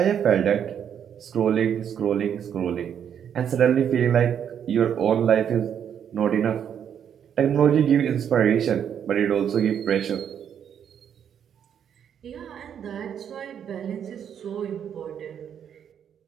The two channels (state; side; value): quieter; left; 8.6 dB